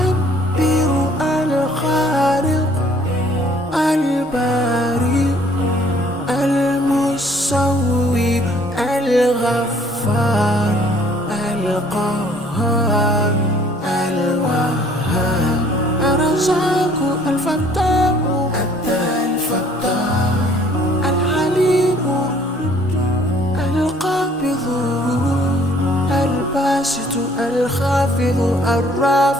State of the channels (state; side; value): normal; both; correlation 0.58